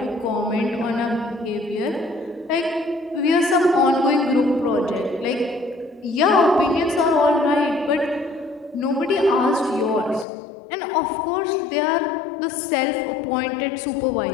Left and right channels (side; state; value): right; drops out; at 10.2 s